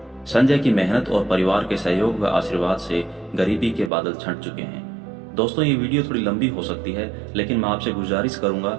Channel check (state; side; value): drops out; left; at 3.9 s